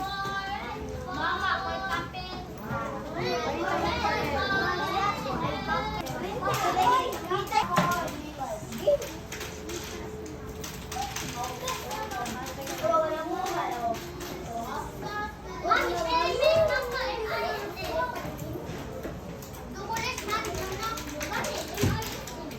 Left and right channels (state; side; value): identical; both; correlation 1.00